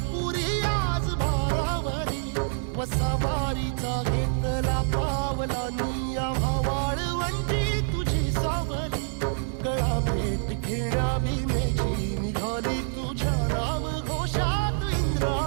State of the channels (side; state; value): left; silent; 60 dB below the other